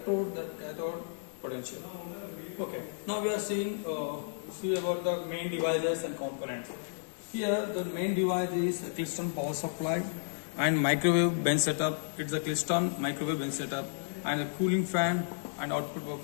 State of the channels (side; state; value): right; silent; digital silence